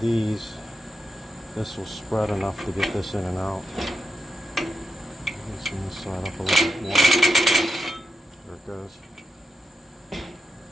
this will spread enough to get this in and out. Loosen this side up a little bit more. There it goes. So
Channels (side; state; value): both; normal; correlation 0.86